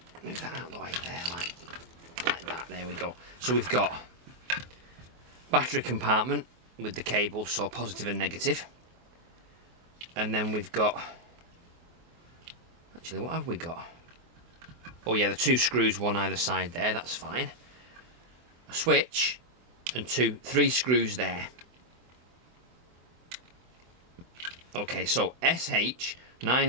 Move that out of the way there, like that. There we go. So we've got battery compartment with the cable, so positive and negative. And then we've got... Actually, what have we got? Oh yeah, the two screws, one either side there, that's fine. A switch and three screws there. Okay, so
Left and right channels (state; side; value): late; left; 24 ms